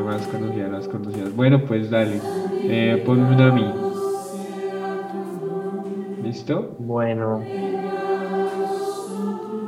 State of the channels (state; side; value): identical; both; correlation 1.00